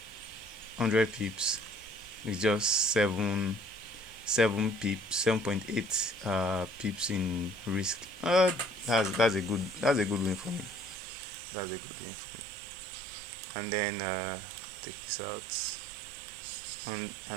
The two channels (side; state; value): left; drops out; at 11.0 s